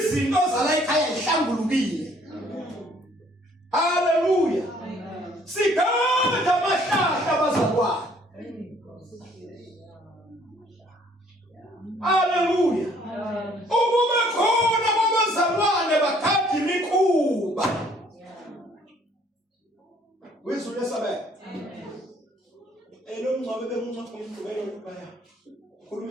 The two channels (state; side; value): normal; both; correlation 0.61